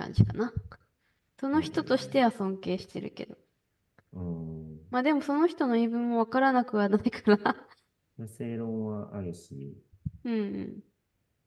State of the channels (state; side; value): identical; both; correlation 1.00